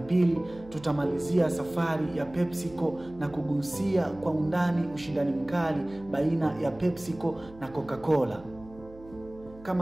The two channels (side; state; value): right; noise; hum, 20 dB below the sound